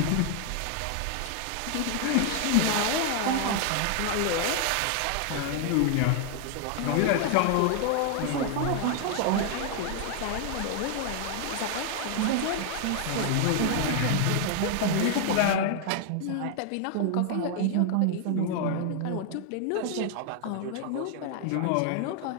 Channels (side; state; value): both; different; correlation 0.00